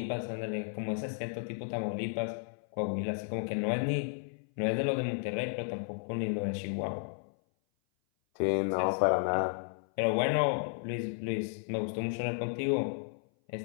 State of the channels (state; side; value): silent; right; 56 dB below the other